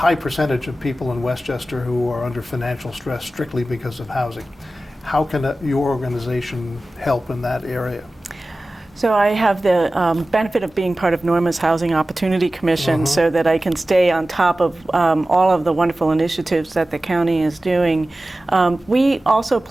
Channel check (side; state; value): both; normal; correlation 0.96